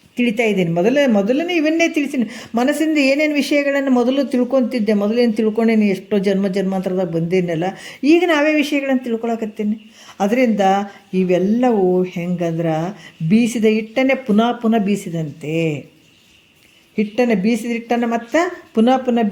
ತಿಳಿತಾ ಇದ್ದೀನಿ. ಮೊದಲನೇ ಇವನ್ನೇ ತಿಳಿಸ್ತೀನಿ. ಮನಸ್ಸಿಂದ ಏನೇನು ವಿಷಯಗಳನ್ನು ಮೊದಲು ತಿಳ್ಕೊತಿದ್ದೆ, ಮೊದಲೇನು ತಿಳ್ಕೊಂಡೇನಿ, ಎಷ್ಟೋ ಜನ್ಮಾಂತರದಾಗ ಬಂದೇನಲ್ಲ, ಈಗ ನಾವೇ ವಿಷಯಗಳನ್ನು ತಿಳ್ಕೊಳಕತ್ತೀನಿ. ಅದರಿಂದ ಇವೆಲ್ಲವೂ ಹೆಂಗಂದ್ರೆ ಬೀಸಿದ ಹಿಟ್ಟನ್ನೇ ಪುನಃ ಬೀಸಿದಂತೆ. ಬೀಸಿದ ಹಿಟ್ಟನ್ನು ಮತ್ತು ಪುನಃ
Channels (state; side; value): identical; both; correlation 1.00